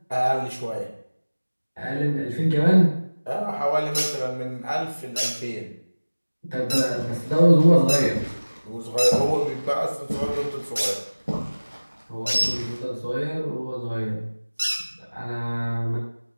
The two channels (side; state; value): both; inverted; correlation -1.00